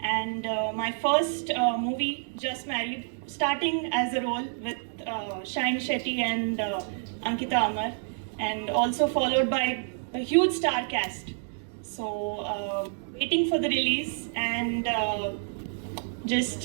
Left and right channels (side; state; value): left; silent; digital silence